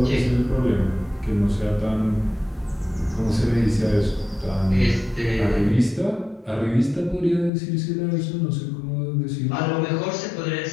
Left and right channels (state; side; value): drops out; right; at 7.5 s